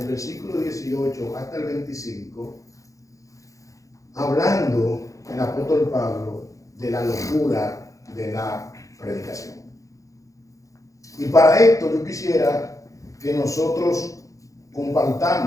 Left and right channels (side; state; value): right; late; 0.16 ms